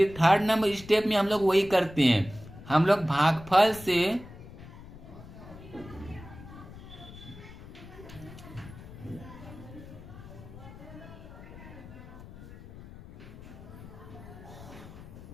थर्ड नंबर स्टेप में हम लोग वही करते हैं, हम लोग भागफल से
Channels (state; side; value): noise; left; rumble, 16 dB below the sound